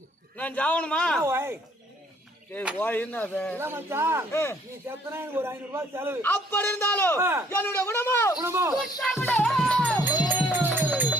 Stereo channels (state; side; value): normal; both; correlation 0.62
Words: நான் ஜாவணுமா ஓய் ஏய் ஓய் என்ன அது இல்ல மச்சான் நீ செத்தனா எனக்கு ஒரு 500 ரூபாய் செலவு அப்படி இருந்தாலும் என்னுடைய குணமோ